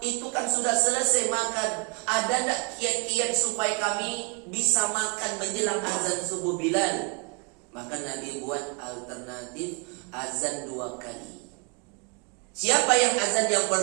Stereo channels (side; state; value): left; quieter; 34.6 dB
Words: itu kan sudah selesai makan. Ada tak kiat-kiat supaya kami bisa makan menjelang azan subuh Bilal? Maka Nabi buat alternatif azan 2 kali. Siapa yang azan yang